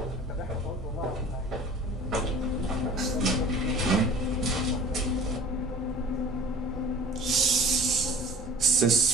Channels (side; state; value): both; normal; correlation 0.44